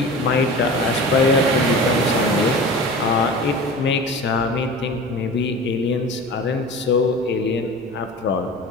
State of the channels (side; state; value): left; noise; rumble, 28 dB below the sound